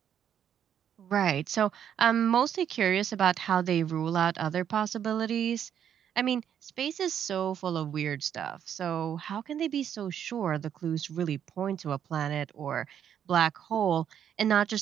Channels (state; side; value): quieter; left; 9.1 dB